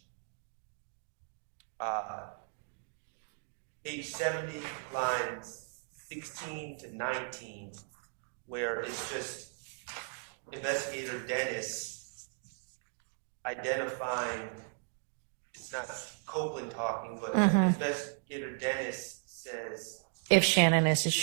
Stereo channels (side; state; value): left; silent; 54 dB below the other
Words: 70, lines 16 to 19, where it's just Investigator Dennis identifying, it's not Copeland talking, but Investigator Dennis says, If Shannon is a